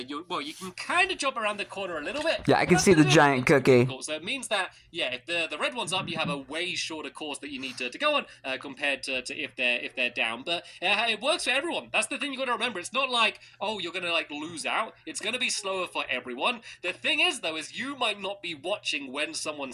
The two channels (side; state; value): both; identical; correlation 1.00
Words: can kind of jump around the corner a little bit. Yeah, I can see the giant cookie. So it means that, yeah, if the red one's up, you have a way shorter course that you need to go on compared to if they're down. But it works for everyone. That's the thing you got to remember. It's not like, oh, you're going to like lose out. It's going to be slower for everyone. The thing is, though, is you might not be watching when someone